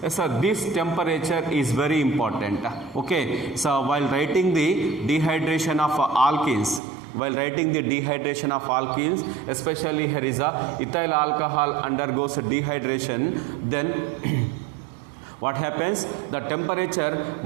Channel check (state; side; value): drops out; left; at 6.8 s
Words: Yes, so this temperature is very important. Okay, so while writing the dehydration of alkenes, especially here is a ethyl alcohol undergoes dehydration, then what happens? The temperature